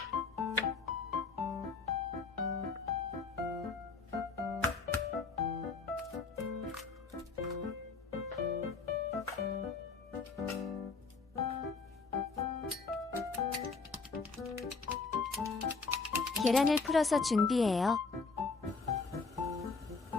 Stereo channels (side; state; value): right; quieter; 4.4 dB